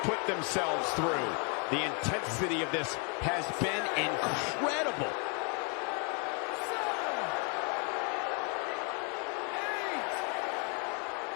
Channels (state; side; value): quieter; right; 36.7 dB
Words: put themselves through. The intensity of this has been incredible.